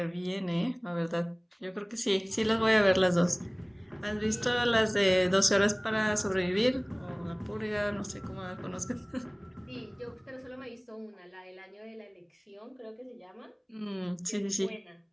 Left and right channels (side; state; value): both; identical; correlation 1.00